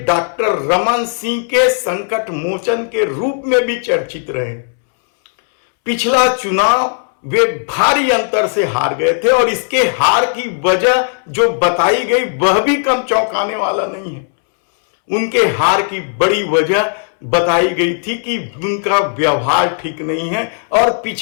डॉक्टर रमन सिंह के संकट मोचन के रूप में भी चर्चित रहे। पिछला चुनाव वे भारी अंतर से हार गए थे और इसके हार की वजह जो बताई गई वह भी कम चौंकाने वाला नहीं है। उनके हार की बड़ी वजह बताई गई थी कि उनका व्यवहार ठीक नहीं है और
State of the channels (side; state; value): right; silent; 68 dB below the other